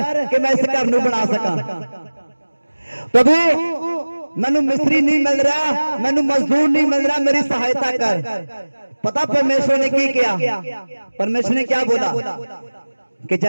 कि मैं इस घर नूं बना सका। प्रभु, मैनू मिस्त्री नहीं मिल रहा, मैनू मजदूर नहीं मिल रहा, मेरी सहायता कर। पता परमेश्वर ने की किया? परमेश्वर ने क्या बोला कि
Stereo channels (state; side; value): inverted; both; correlation -1.00